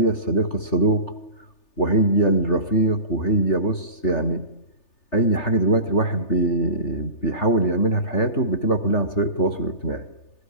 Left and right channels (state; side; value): late; right; 3.4 ms